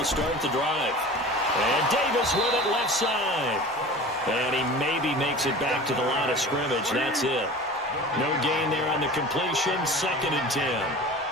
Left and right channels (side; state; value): both; normal; correlation 0.37